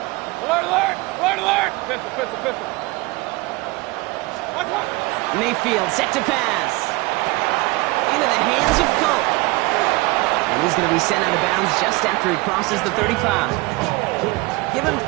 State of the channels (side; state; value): left; quieter; 23.2 dB